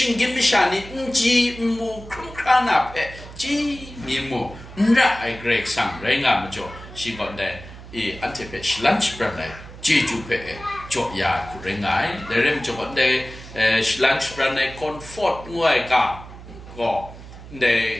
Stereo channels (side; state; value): right; noise; hum, 16 dB below the sound